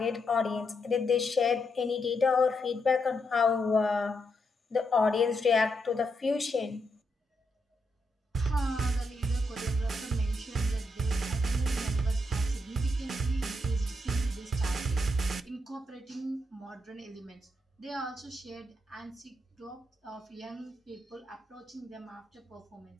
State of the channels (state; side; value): normal; both; correlation 0.81